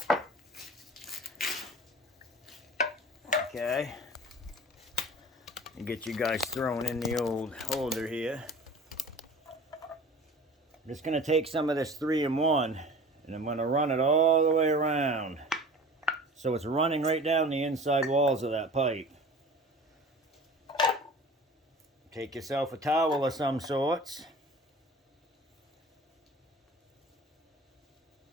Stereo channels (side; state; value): both; normal; correlation 0.41